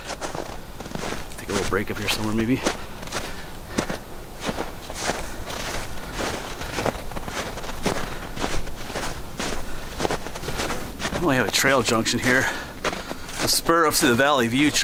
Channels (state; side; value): identical; both; correlation 1.00